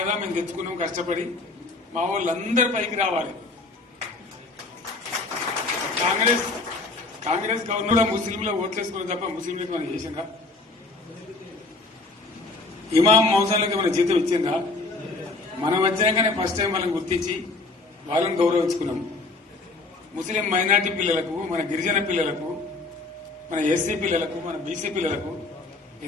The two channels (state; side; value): quieter; right; 3.4 dB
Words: కదా మేము తెచ్చుకున్నాం కష్టపడి. మా వాళ్ళందరి పైకి రావాలి. కాంగ్రెస్ గవర్నర్ ముస్లింలో ఓట్లేసుకున్న తప్ప ముస్లింలకు మనం చేసిందా? ఇమాం మౌసాలకి మన జీతం ఇచ్చిందా? మనం వచ్చినాకనే ఫస్ట్ టైం వాళ్ళని గుర్తించి వాళ్ళని గౌరవించుకున్నాం. ముస్లిం మైనార్టీ పిల్లలకు, మన గిరిజన పిల్లలకు, మన ఎస్సీ పిల్లలకు, మన బీసీ పిల్లలకు